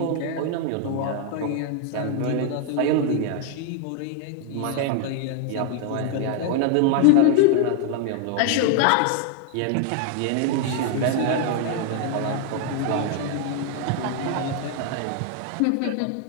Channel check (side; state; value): both; different; correlation 0.00